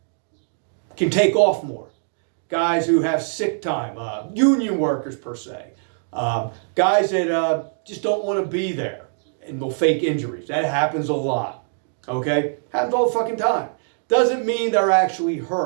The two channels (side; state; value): left; silent; digital silence